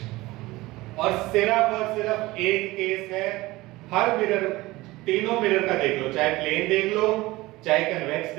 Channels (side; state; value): left; quieter; 19.7 dB